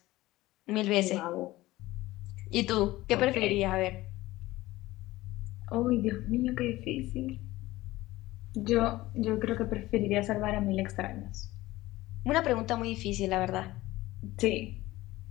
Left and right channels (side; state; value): right; quieter; 17.9 dB